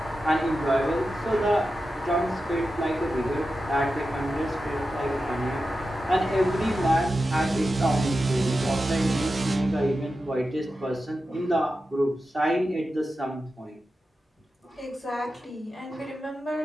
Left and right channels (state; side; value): normal; both; correlation 0.91